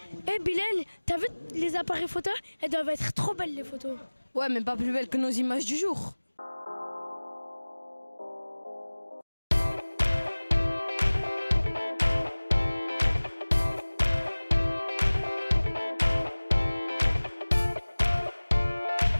Bilal, t'as vu les appareils photos? Elles doivent être trop belles les photos. Ouais, mais pas plus belles que nos images du jour.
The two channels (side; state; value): both; inverted; correlation -1.00